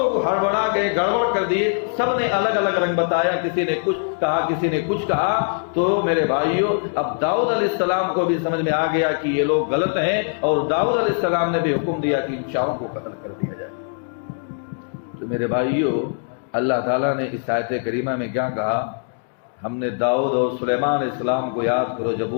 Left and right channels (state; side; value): silent; right; digital silence